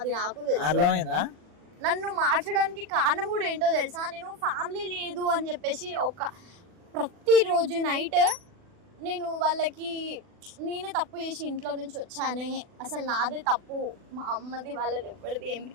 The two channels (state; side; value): late; left; 40 ms